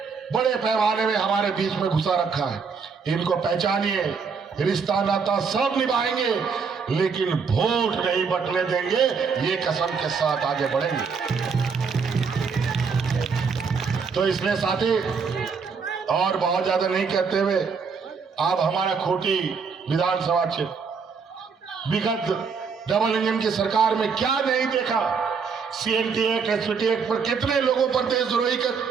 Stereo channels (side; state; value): left; quieter; 5.6 dB